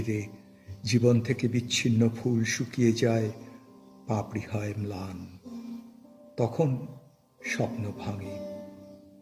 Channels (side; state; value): both; identical; correlation 1.00